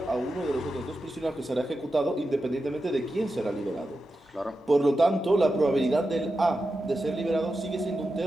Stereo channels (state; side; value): normal; both; correlation 0.90